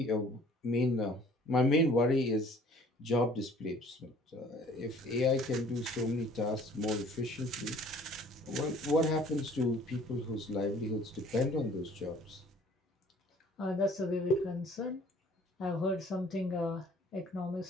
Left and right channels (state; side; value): normal; both; correlation 0.54